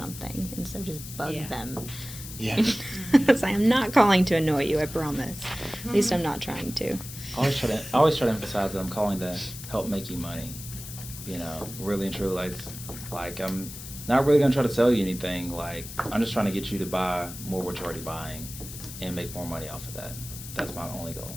instead of just bug Yeah. them. Yeah. So I'm not calling to annoy you, I promise. At least I'm not trying to. I always try to emphasize that I'm calling to help make you money. Really and truly, like I'm not really gonna try to sell you anything. Like, I'm just trying to get you to buy more what you're already buying and make more money off of that. That's my only goal.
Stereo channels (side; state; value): left; noise; hiss, 12 dB below the sound